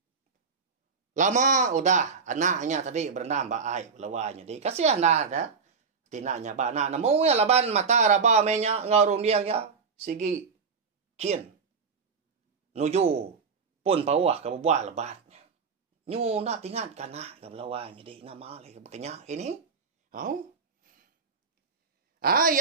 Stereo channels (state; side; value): quieter; left; 5.3 dB